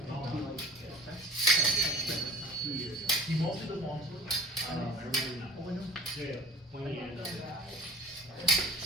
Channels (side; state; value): both; normal; correlation 0.42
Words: And I'll be like, that's 2 years ago. he mostly does long swords. Everybody not. Oh, I know. Yeah.